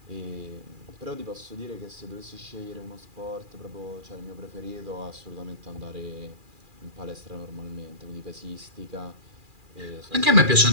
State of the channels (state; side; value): late; left; 2.4 ms